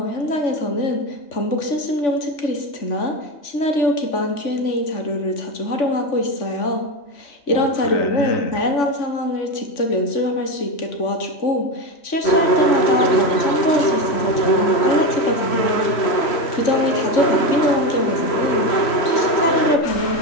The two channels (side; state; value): right; late; 3.1 ms